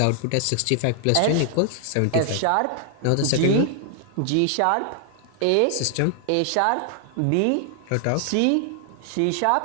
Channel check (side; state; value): both; different; correlation 0.00